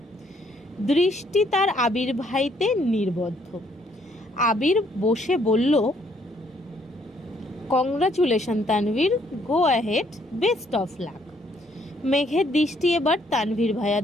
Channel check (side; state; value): both; normal; correlation 0.67